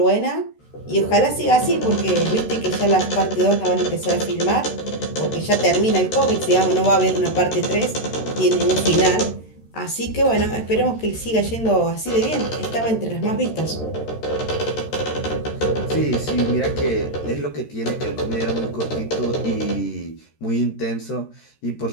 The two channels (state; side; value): late; right; 13 ms